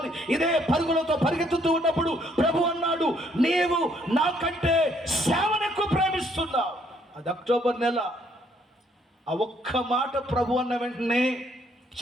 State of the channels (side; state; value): both; normal; correlation 0.67